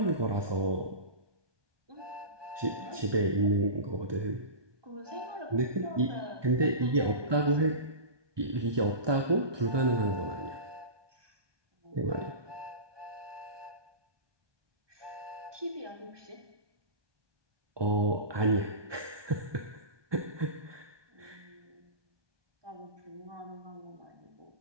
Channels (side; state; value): left; late; 1.2 ms